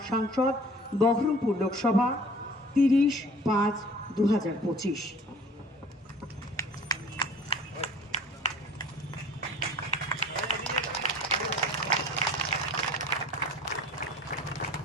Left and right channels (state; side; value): normal; both; correlation 0.48